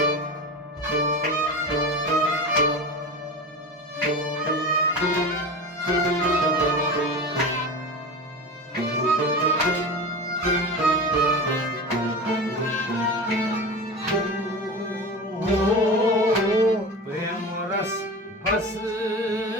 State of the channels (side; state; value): both; normal; correlation 0.29